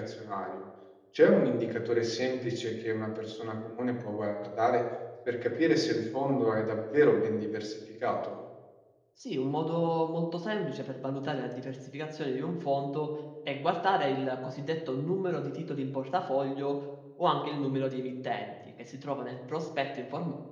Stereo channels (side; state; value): both; identical; correlation 1.00